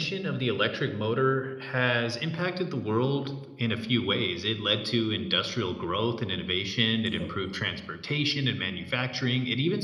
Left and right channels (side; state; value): both; identical; correlation 1.00